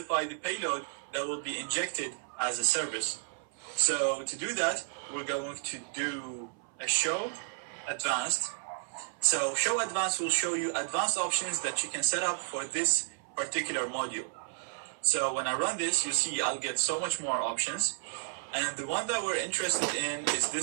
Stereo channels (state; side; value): silent; left; 55 dB below the other